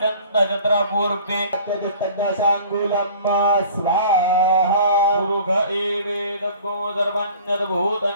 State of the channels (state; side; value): inverted; both; correlation -0.47